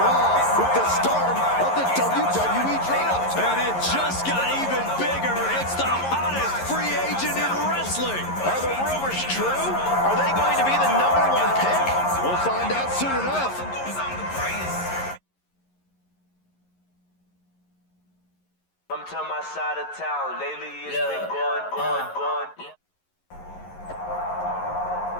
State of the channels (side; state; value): right; late; 11 ms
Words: Raw with the start of the WWE Draft. And it just got even bigger. It's the hottest free agent in wrestling. Are the rumors true? Are they going to be the #1 pick? We'll find out soon enough. Come to my side of town. Lately it's been going.